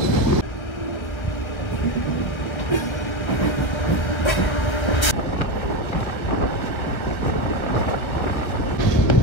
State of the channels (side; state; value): right; late; 1.5 ms